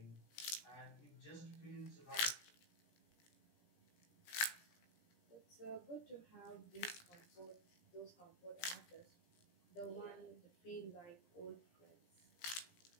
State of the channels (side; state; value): right; late; 17 ms